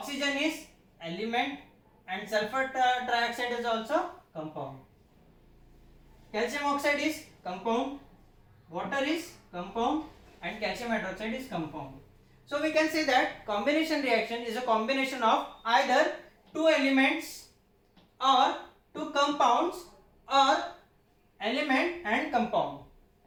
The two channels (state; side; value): identical; both; correlation 1.00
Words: is element and sulfur trioxide is also compound. Calcium oxide is compound, water is compound and calcium hydroxide is compound. So we can say that combination reaction is a combination of either two elements or two compounds और element and compound,